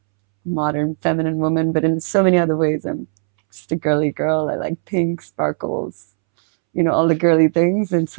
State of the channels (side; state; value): left; silent; 67 dB below the other